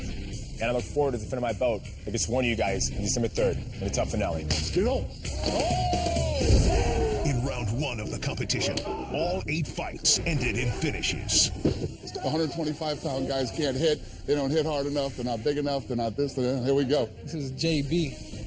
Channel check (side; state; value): both; identical; correlation 1.00